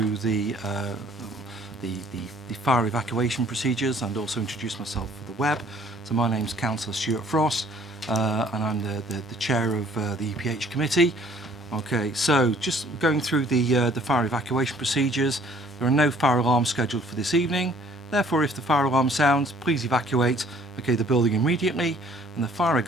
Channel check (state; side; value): normal; both; correlation 0.57